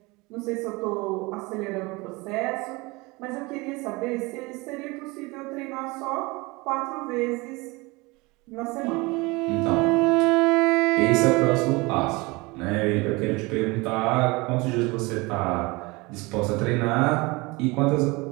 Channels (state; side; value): quieter; left; 24.4 dB